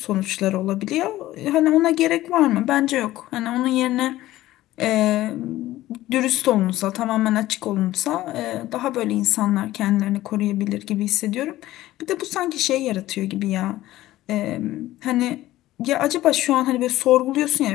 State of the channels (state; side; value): quieter; right; 15.7 dB